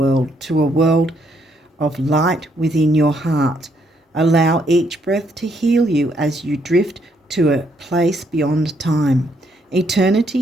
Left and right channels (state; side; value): normal; both; correlation 0.72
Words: to a world of light within your heart. Allow each breath to heal you as you drift to a place beyond time.